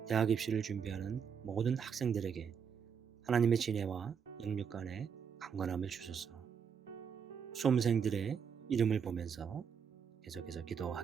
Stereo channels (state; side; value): quieter; left; 7.0 dB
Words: 대학 입시를 준비하는 모든 학생들에게 하나님의 지혜와 영육간의 강건함을 주소서. 수험생들의 이름을 보면서 계속해서